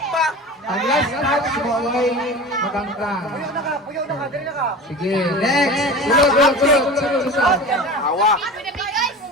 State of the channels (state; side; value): normal; both; correlation 0.34